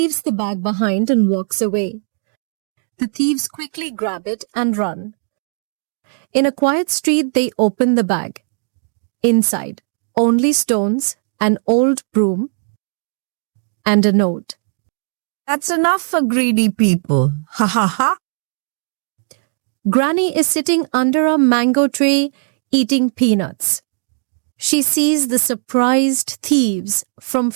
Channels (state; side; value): silent; left; 64 dB below the other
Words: the bag behind and walks away. The thieves quickly grab it and run. In a quiet street, they open the bag. Inside, only stones, an old broom, and a note. That's enough for greedy people. Ha ha ha. Granny is sitting under a mango tree eating peanuts. She sees the surprised thieves from